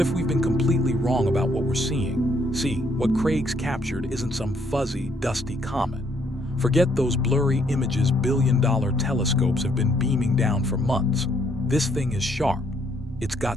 we've been completely wrong about what we're seeing? See, what Craigs captured isn't some fuzzy, dusty comet. Forget those blurry images billion-dollar telescopes have been beaming down for months. This thing is sharp. It's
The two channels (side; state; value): both; normal; correlation 0.69